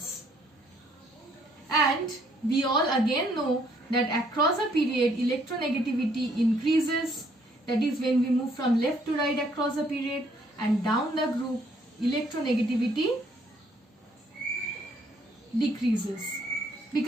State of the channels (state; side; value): normal; both; correlation 0.66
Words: And we all again know that across a period electronegativity increases, that is when we move from left to right across a period, and down the group electronegativity decreases.